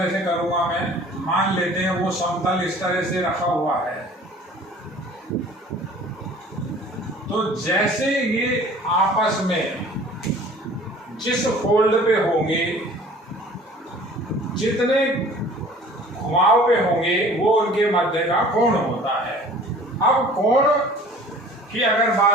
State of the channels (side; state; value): both; normal; correlation 0.48